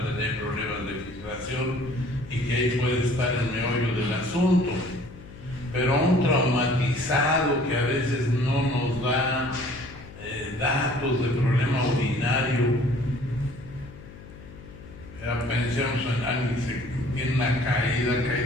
tener problemas de filtración y que ahí puede estar el meollo del asunto. Pero un traumatizado que a veces no nos da datos de problema urinario, pensemos en alguien que tiene una caída, cae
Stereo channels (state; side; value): noise; left; hum, 17 dB below the sound